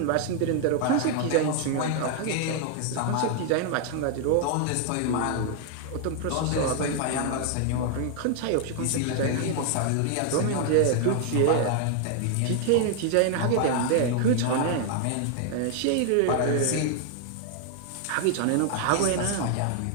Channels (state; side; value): different; both; correlation 0.00